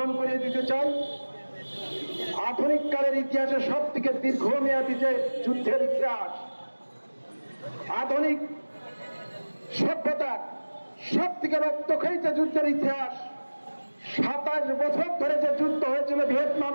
করিয়ে দিতে চাই। আধুনিক কালের ইতিহাসে সব থেকে দীর্ঘমেয়াদী যে যুদ্ধের ইতিহাস, আধুনিক সভ্যতার সব থেকে রক্তক্ষয়ী যে যুদ্ধের ইতিহাস, 27 বছর ধরে যে যুদ্ধ হয়েছিল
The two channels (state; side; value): inverted; both; correlation -1.00